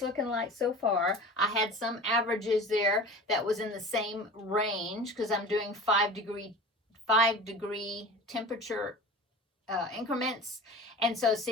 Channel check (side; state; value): both; normal; correlation 0.37